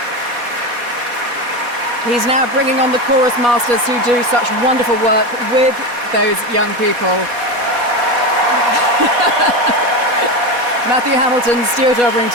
He's now bringing on the chorus masters who do such wonderful work with those young people. Matthew Hamilton, Stuart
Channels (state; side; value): late; left; 4.2 ms